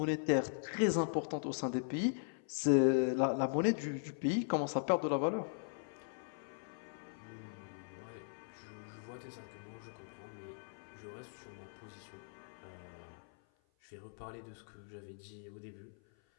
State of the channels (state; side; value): silent; right; 51 dB below the other